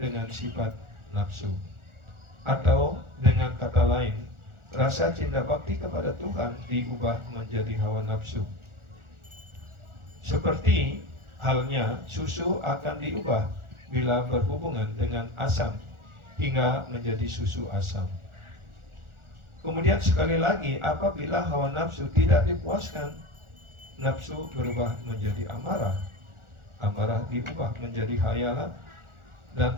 dengan sifat nafsu. Atau dengan kata lain, rasa cinta bakti kepada Tuhan diubah menjadi hawa nafsu. Seperti halnya susu akan diubah bila berhubungan dengan asam hingga menjadi susu asam. Kemudian sekali lagi, apabila hawa nafsu tidak dipuaskan, nafsu berubah menjadi amarah. Amarah diubah menjadi hayalan, dan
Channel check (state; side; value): late; left; 1.4 ms